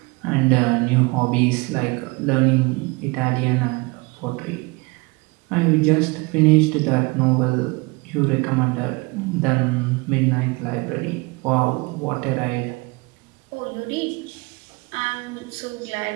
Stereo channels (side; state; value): left; quieter; 26.2 dB